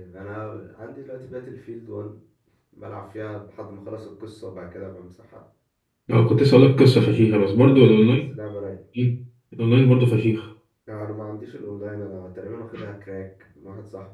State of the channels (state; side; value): identical; both; correlation 1.00